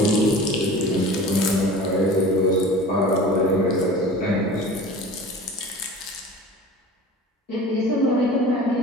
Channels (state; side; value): normal; both; correlation 0.39